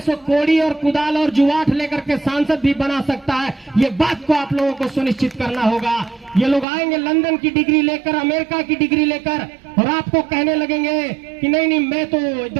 सो कोड़ी और कुदाल और जुआठ लेकर के सांसद भी बना सकता है। ये बात को आप लोगों को सुनिश्चित करना होगा। ये लोग आएंगे लंदन की डिग्री लेकर, अमेरिका की डिग्री लेकर, और आपको कहने लगेंगे कि नहीं नहीं, मैं तो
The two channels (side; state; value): left; drops out; at 6.7 s